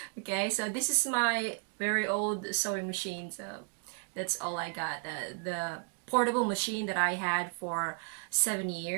Okay, so this is my very old sewing machine, so that's all I got. The portable machine that I had for 7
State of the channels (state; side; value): quieter; left; 39.0 dB